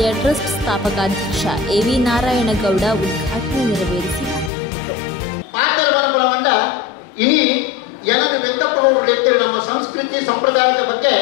ಟ್ರಸ್ಟ್ ಸ್ಥಾಪಕಾಧ್ಯಕ್ಷ ಎವಿ ನಾರಾಯಣಗೌಡ ಉದ್ಘಾಟನೆ ನೆರವೇರಿಸಿ ಮಾತನಾಡುವಂತ ಇನಿ ಜನರು ವ್ಯಕ್ತಪಡುವ ನಮ್ಮ ಸಂಸ್ಕೃತಿ ಸಂಪ್ರದಾಯದ ಬಗ್ಗೆ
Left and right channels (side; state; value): right; drops out; at 4.5 s